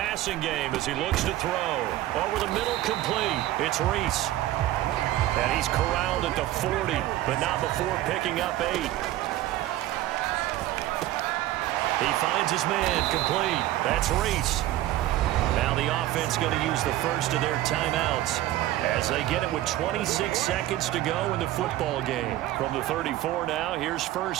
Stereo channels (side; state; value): left; quieter; 14.8 dB